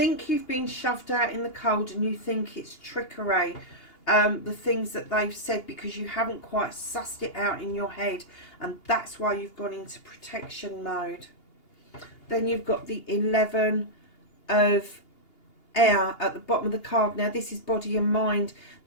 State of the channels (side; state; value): right; late; 2.8 ms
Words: you've been shoved out in the cold, and you think it's trickery. The things that they've said, because you haven't quite sussed it out in your head, and that's why you've gone into protection mode. Then you've got the 11 of Air at the bottom of the card. Now this is body and mind.